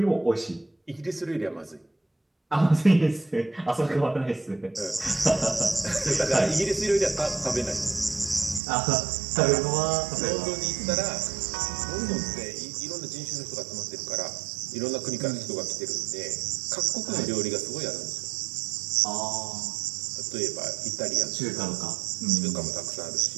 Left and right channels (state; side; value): drops out; left; at 8.6 s